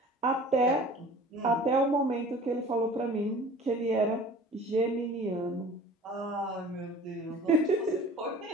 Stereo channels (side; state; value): both; normal; correlation 0.45